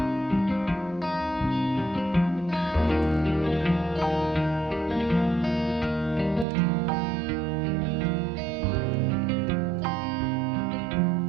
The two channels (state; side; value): drops out; left; at 6.5 s